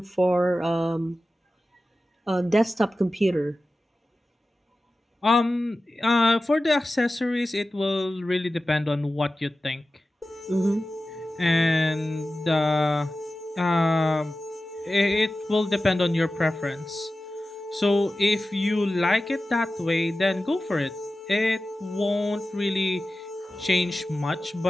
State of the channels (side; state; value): both; normal; correlation 0.95